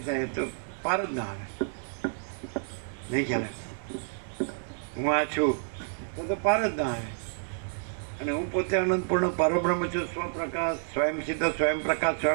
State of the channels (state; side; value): silent; left; 58 dB below the other